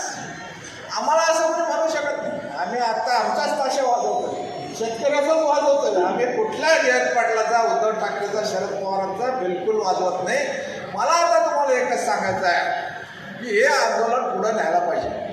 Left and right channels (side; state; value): both; identical; correlation 1.00